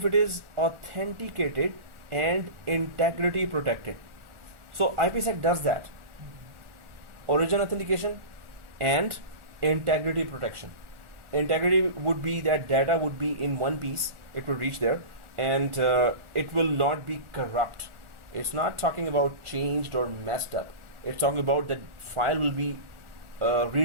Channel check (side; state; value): left; late; 1.4 ms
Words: it is authenticated and integrity protected. So IPsec does that. Origin authentication and integrity protection. Integrity would be that data would be in one piece, it will reach there, and it will not be corrupt. It's not talking about changed or messed up. It's talking about that file will be